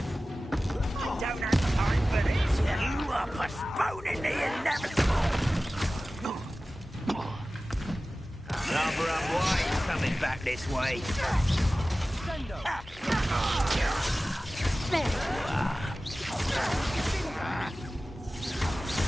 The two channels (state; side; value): normal; both; correlation 0.96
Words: I don't have time for this. You are postponing the inevitable. Rather unwise coming back this way. There you are.